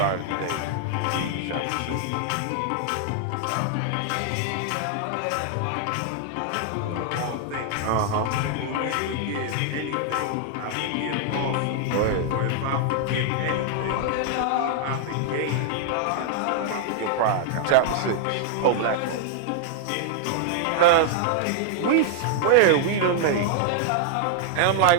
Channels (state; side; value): different; both; correlation 0.00